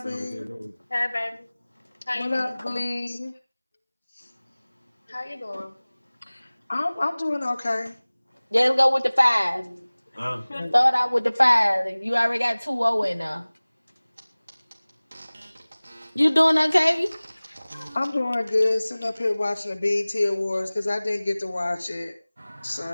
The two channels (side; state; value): both; inverted; correlation -1.00